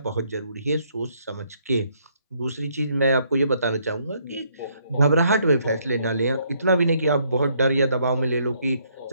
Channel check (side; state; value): both; inverted; correlation -0.70